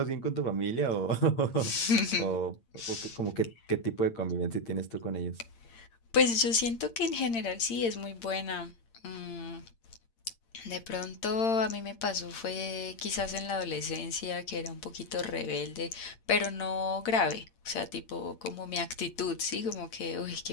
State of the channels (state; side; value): late; right; 8.8 ms